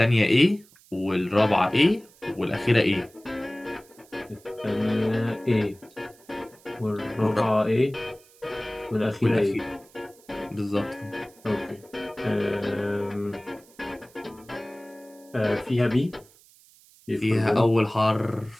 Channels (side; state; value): right; noise; hiss, 27 dB below the sound